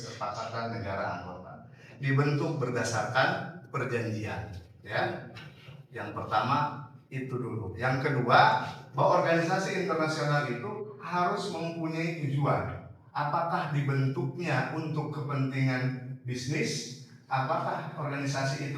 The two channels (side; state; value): both; identical; correlation 1.00